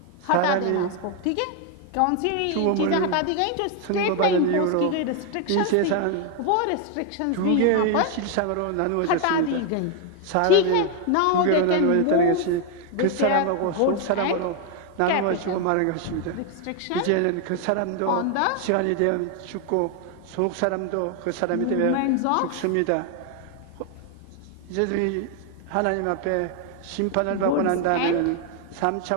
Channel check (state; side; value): different; both; correlation 0.01